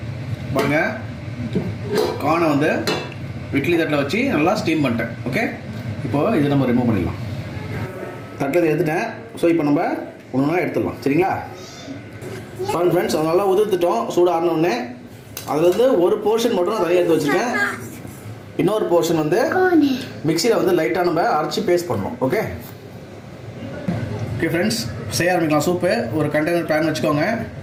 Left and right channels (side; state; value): both; identical; correlation 1.00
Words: பாருங்கள், கார்னை வந்து இட்லி தட்டில் வச்சு நல்லா ஸ்டீம் பண்ணிட்டேன். ஓகே, இப்போது இது நம்ம ரிமூவ் பண்ணிடலாம். தட்டில் எடுத்துட்டேன். ஸோ இப்போ நம்ம ஒன்று எடுத்துடலாம். சரிங்களா ஃப்ரெண்ட்ஸ், அது நல்லா உதிர்த்துட்டோம். சூடு ஆறினோடனே அதுலேருந்து ஒரு போர்ஷன் மட்டும் நான் தனியாக எடுத்து வச்சுருக்கேன். இன்னொரு போர்ஷன் வந்து மிக்சியில் வந்து லைட்டாக நம்ம அரைச்சி பேஸ்ட் பண்ணணும். ஓகே ஃப்ரெண்ட்ஸ், செய்ய ஆரம்பிக்கலாம். சூப்பு ஒரு கண்டெய்னர் பேன் வச்சுக்கோங்க.